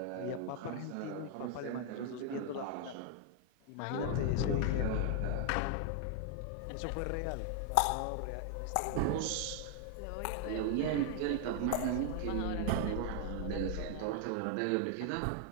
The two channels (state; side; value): different; both; correlation 0.00